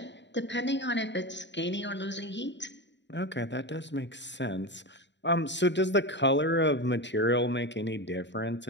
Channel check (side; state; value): right; late; 0.52 ms